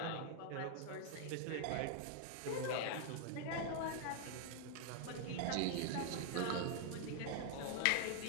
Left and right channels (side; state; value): both; different; correlation 0.00